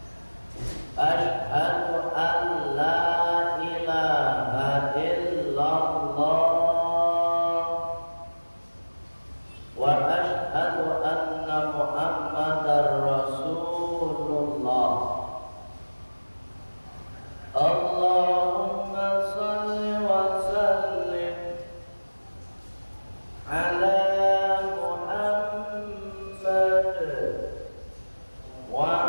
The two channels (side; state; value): both; inverted; correlation -1.00